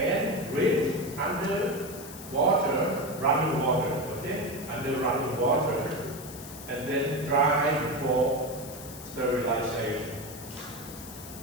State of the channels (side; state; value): left; noise; hiss, 14 dB below the sound